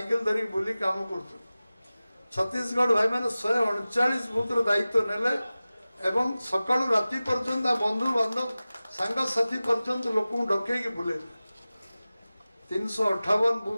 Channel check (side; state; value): both; inverted; correlation -0.97